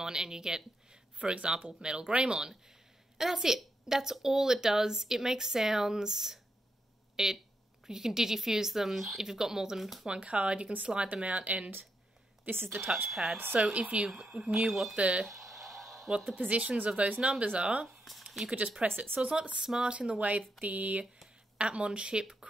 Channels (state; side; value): normal; both; correlation 0.82